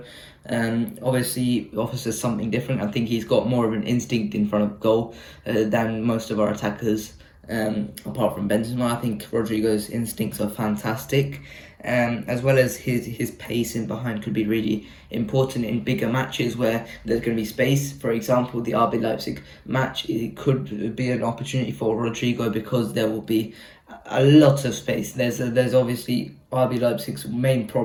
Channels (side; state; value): both; identical; correlation 1.00